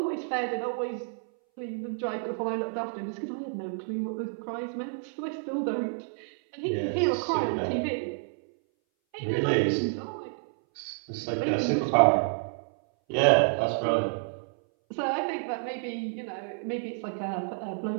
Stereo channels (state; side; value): silent; left; 58 dB below the other